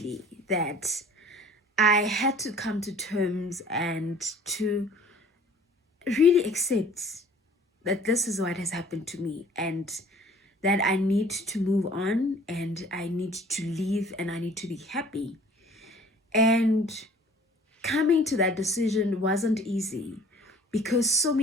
that I had to come to terms and to really accept that this is what has happened to me, and that I need to move on, and I need to leave, and I need to be happy. And coming to that decision wasn't easy, because so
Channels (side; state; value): both; normal; correlation 0.51